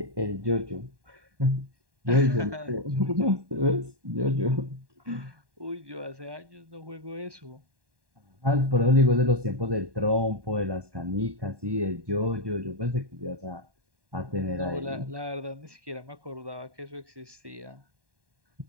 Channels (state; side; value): late; left; 1.2 ms